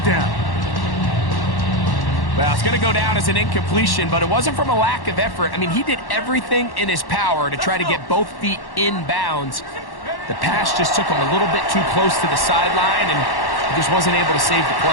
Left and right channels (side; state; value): right; late; 1.1 ms